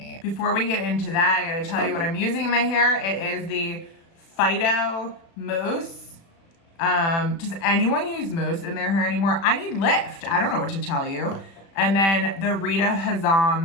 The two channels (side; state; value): right; late; 36 ms